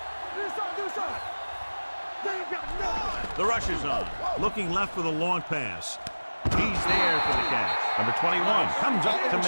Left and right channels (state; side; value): inverted; both; correlation -1.00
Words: The rush is on. Looking left for the long pass. He's there for the catch. Number 21 comes up to